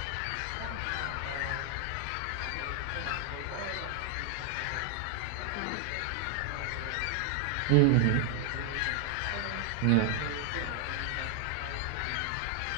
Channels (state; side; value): different; both; correlation 0.00